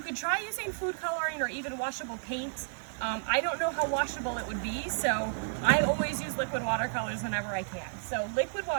try using food coloring or even washable paint. I don't know how washable it would be, so I always use liquid watercolors whenever I can. So liquid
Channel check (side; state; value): left; silent; 57 dB below the other